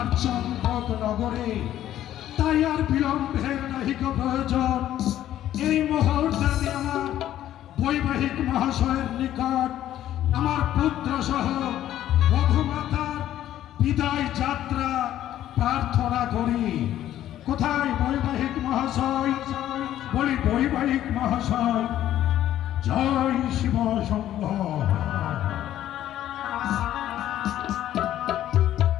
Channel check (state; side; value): quieter; right; 12.3 dB